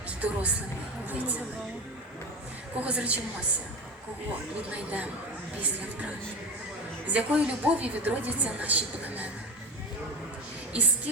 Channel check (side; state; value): both; normal; correlation 0.26